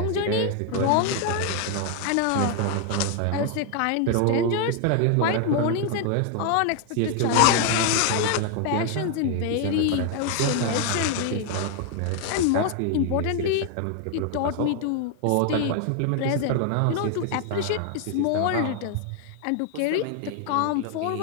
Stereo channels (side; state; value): both; different; correlation 0.00